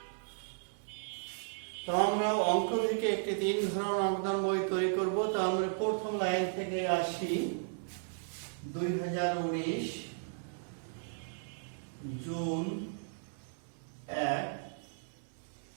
তো আমরা অঙ্ক থেকে একটি 3 ঘর নগদান বই তৈরি করব। তো আমরা প্রথম লাইন থেকে আসি। 2019 জুন 1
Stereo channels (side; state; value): left; silent; digital silence